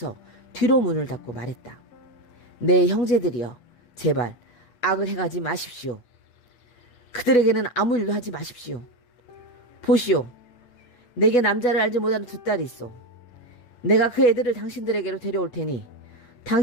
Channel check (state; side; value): late; right; 8.6 ms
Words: 뒤로 문을 닫고 말했다. 내 형제들이여 제발 악을 행하지 마십시오. 그들에게는 아무 일도 하지 마십시오. 보시오 내게 남자를 알지 못하는 두 딸이 있어. 내가 그 애들을 당신들에게로 데려올 테니